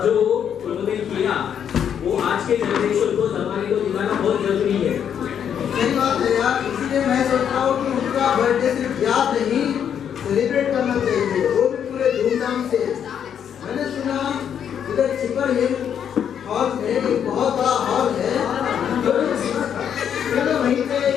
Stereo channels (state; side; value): quieter; right; 8.6 dB